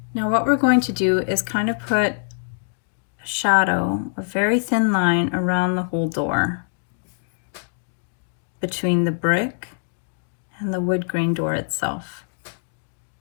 Now what we're going to do is kind of put a shadow, a very thin line around the whole door between the brick and the wood grain door itself.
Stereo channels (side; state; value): right; silent; digital silence